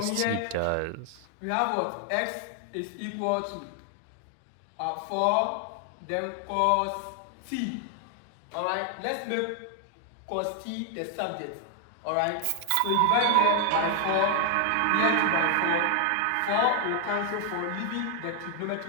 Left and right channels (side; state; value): both; different; correlation 0.00